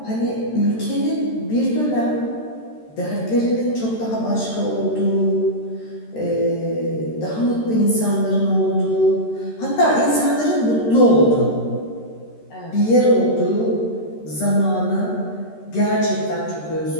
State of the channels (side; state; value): right; late; 13 ms